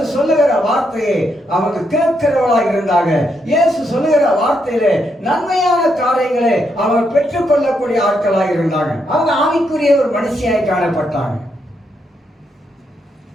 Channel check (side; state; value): both; normal; correlation 0.79